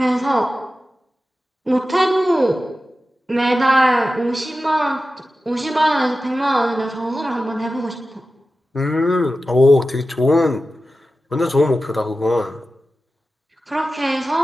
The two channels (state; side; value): normal; both; correlation 0.94